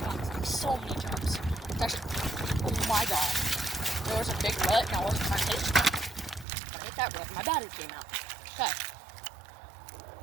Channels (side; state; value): left; drops out; at 6.5 s